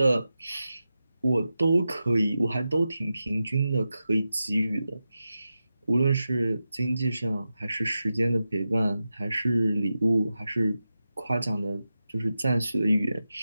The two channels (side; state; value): both; inverted; correlation -0.91